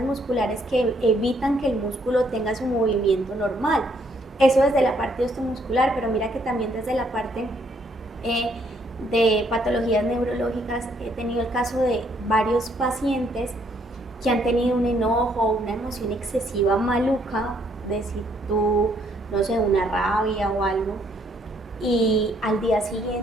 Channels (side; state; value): both; normal; correlation 0.69